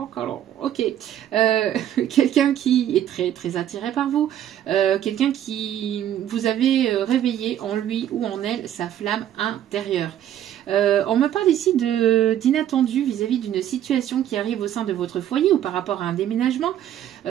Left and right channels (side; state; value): left; quieter; 11.1 dB